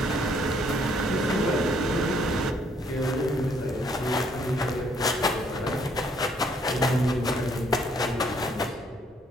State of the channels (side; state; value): both; normal; correlation 0.67